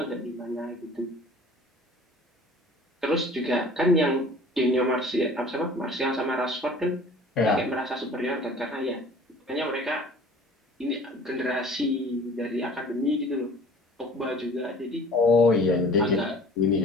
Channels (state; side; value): normal; both; correlation 0.46